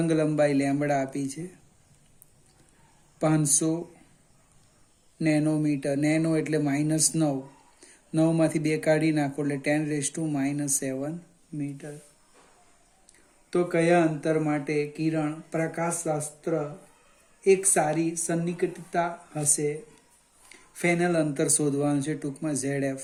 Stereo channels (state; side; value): identical; both; correlation 1.00